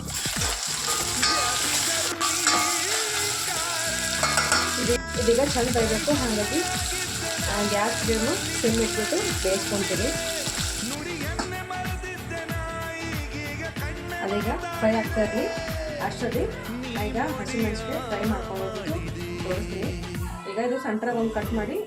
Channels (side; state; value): both; identical; correlation 1.00